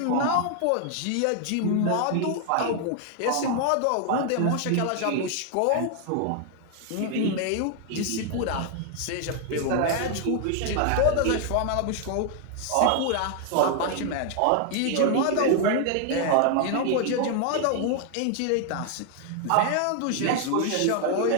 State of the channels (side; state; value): both; different; correlation 0.00